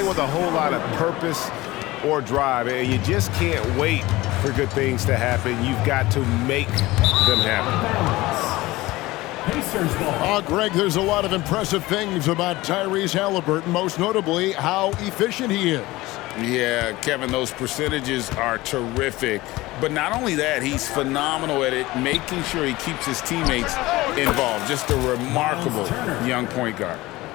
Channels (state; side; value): quieter; right; 19.3 dB